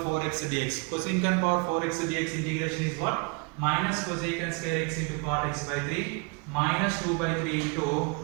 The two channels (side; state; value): left; quieter; 31.4 dB